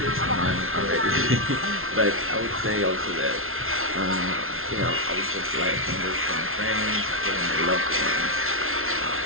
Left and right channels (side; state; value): left; late; 0.61 ms